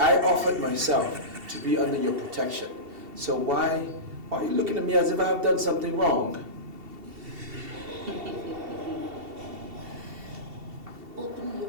offered myself to be under your protection. So why are you looking at me as if I've done something wrong? Open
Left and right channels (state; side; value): late; left; 2.7 ms